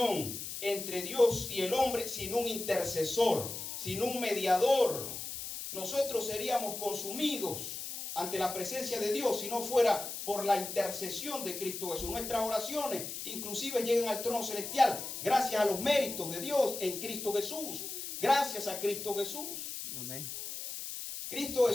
entre Dios y el hombre sin un intercesor, sin un mediador. Nosotros seríamos consumidos ante la presencia de Dios si no fuera por la intercesión de Cristo Jesús. Nuestras oraciones inclusive llegan al trono celestial gracias a los méritos de Dios en Cristo Jesús. Gracias a Cristo Jesús. Amén. Cristo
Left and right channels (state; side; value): noise; left; hiss, 7 dB below the sound